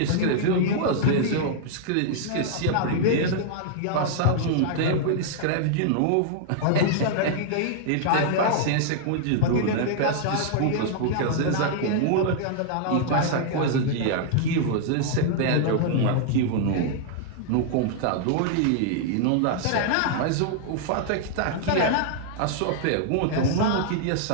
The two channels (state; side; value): different; both; correlation -0.01